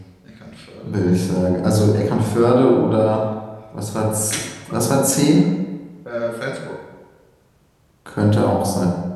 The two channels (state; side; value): identical; both; correlation 1.00